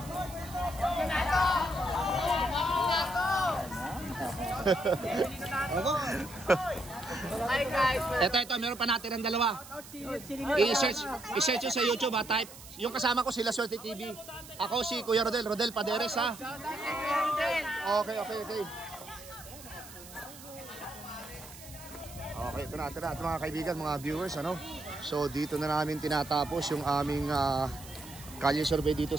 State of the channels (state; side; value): noise; right; hiss, 17 dB below the sound